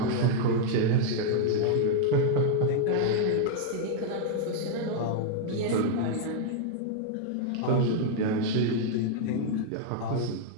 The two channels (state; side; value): different; both; correlation 0.00